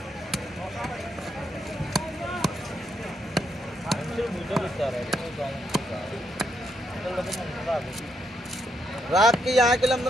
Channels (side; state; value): both; normal; correlation 0.78